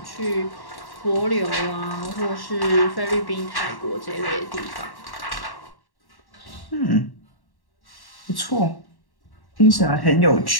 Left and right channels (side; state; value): right; late; 1.1 ms